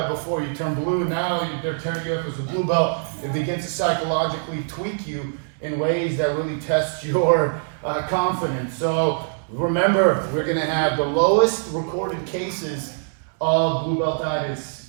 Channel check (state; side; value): silent; left; digital silence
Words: before you turn blue. Now they're tearing you up as a blue belt. It begins to psychologically tweak you in ways that really test your confidence. So remember, we're going to have the lowest recorded cases of blue beltitis